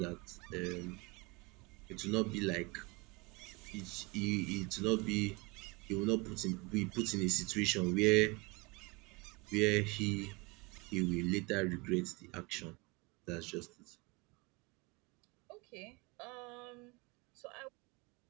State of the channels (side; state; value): left; quieter; 26.4 dB